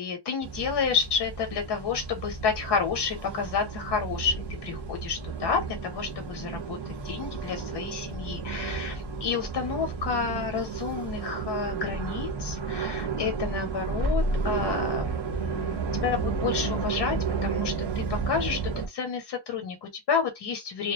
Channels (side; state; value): right; late; 1.1 ms